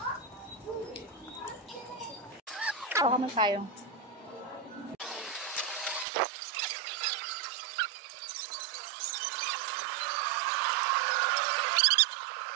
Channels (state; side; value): drops out; left; at 6.1 s